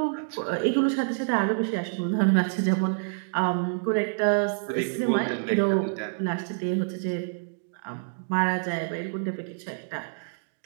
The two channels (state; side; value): silent; left; digital silence